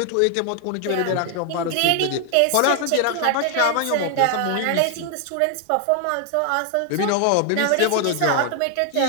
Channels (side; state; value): both; different; correlation 0.00